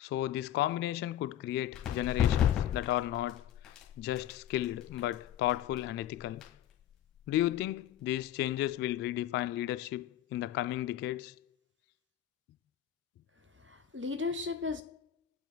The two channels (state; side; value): quieter; right; 11.4 dB